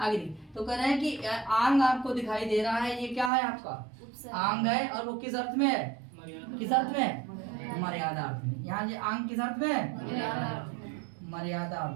तो कह रहे हैं कि आंग आपको दिखाई दे रहा है, ये क्या है आपका? आंग है। और वो किस अर्थ में है? किस अर्थ में है? मर्यादा अर्थ में। यहाँ ये आंग किस अर्थ में है? मर्यादा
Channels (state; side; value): drops out; left; at 3.3 s